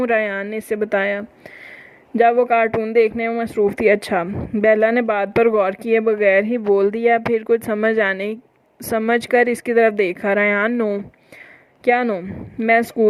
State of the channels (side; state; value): both; identical; correlation 1.00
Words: रायान ने इसे बताया जब वो कार्टून देखने में मसरूफ़ थी। अच्छा, बेला ने बात पर गौर किए बगैर ही बोल दिया, फिर कुछ समझ कर इसकी तरफ देखा। रायान, नो। क्या नो? मैं